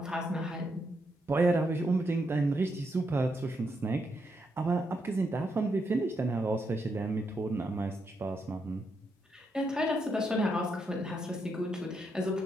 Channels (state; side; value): normal; both; correlation 0.80